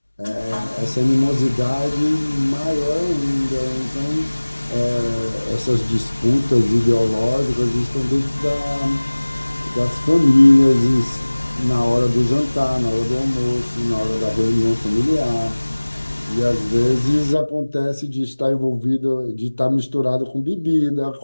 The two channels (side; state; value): both; inverted; correlation -1.00